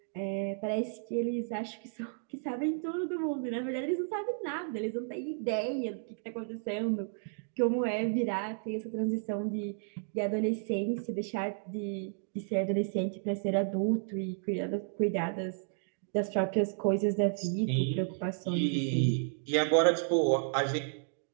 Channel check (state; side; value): silent; left; digital silence